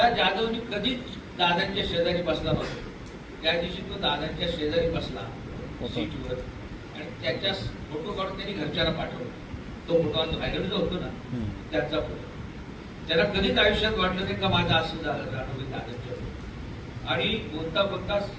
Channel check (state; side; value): identical; both; correlation 1.00